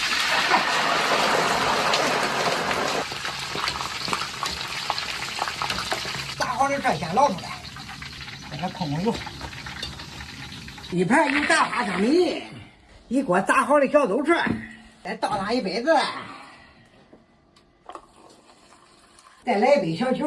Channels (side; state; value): both; identical; correlation 1.00